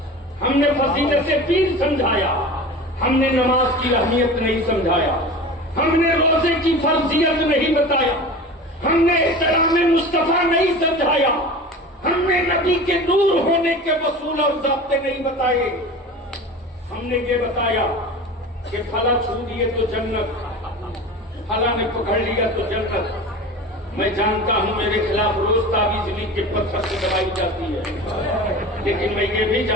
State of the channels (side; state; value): both; normal; correlation 0.34